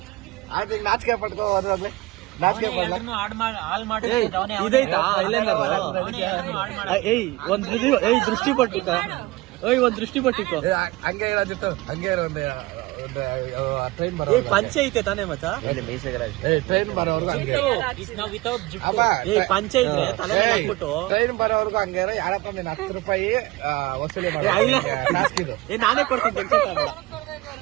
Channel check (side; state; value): left; quieter; 19.9 dB